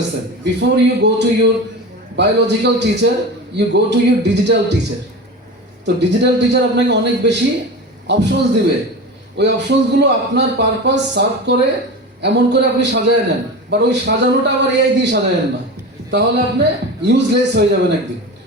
Before you go to your biological teacher, you go to your digital teacher. তো ডিজিটাল টিচার আপনাকে অনেক বেশি অপশনস দিবে, ওই অপশনসগুলো আপনার পারপাস সার্ভ করে এমন করে আপনি সাজায় নেন, বাট ওই সাজানোটা আবার এআই দিয়ে সাজায়েন না, তাহলে আপনি ইউজলেস হয়ে যাবেন একদিন,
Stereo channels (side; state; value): both; normal; correlation 0.28